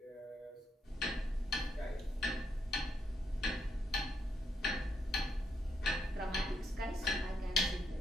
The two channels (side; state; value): both; normal; correlation 0.78